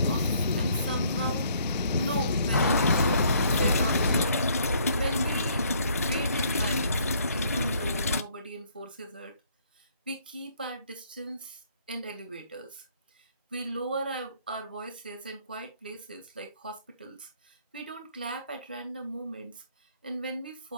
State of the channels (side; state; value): both; inverted; correlation -0.64